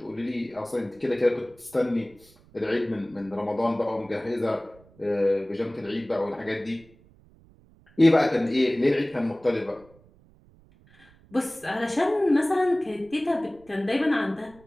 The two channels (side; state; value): right; noise; rumble, 27 dB below the sound